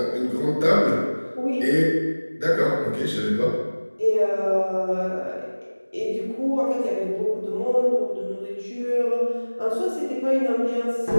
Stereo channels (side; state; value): both; inverted; correlation -1.00